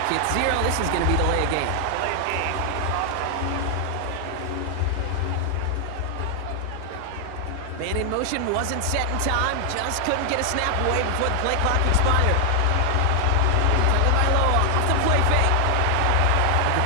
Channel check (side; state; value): both; different; correlation 0.00